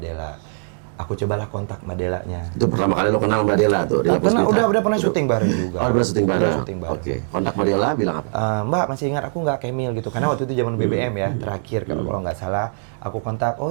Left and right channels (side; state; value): left; silent; digital silence